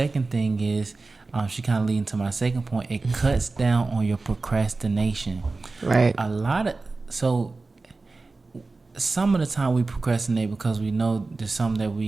thing is, she kind of leading to my second point. It cuts down on your procrastination. Right. Some of the time we procrastinate because we know there's something that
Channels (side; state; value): left; quieter; 3.6 dB